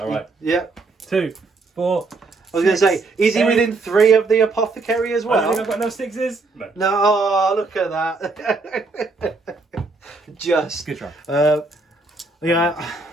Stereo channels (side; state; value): left; quieter; 3.6 dB